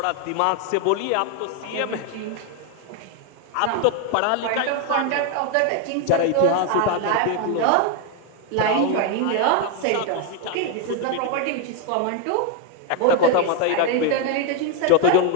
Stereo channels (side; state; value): both; different; correlation 0.01